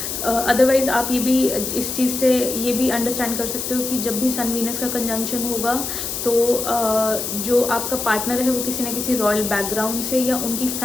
अदरवाइज़ आप ये भी इस चीज़ से ये भी अंडरस्टैंड कर सकते हो कि जब भी सन वीनस का कंजंक्शन होगा तो जो आपका पार्टनर है वो किसी न किसी रॉयल बैकग्राउंड से या उनकी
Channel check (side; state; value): left; noise; hiss, 4 dB below the sound